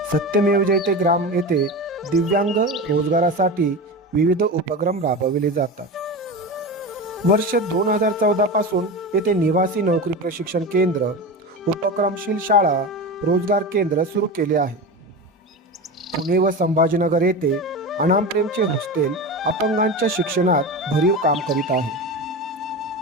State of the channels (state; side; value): normal; both; correlation 0.25